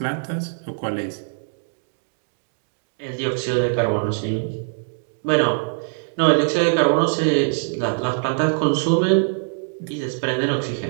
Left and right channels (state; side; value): silent; left; digital silence